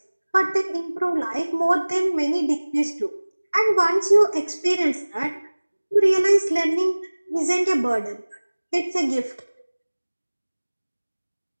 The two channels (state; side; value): inverted; both; correlation -1.00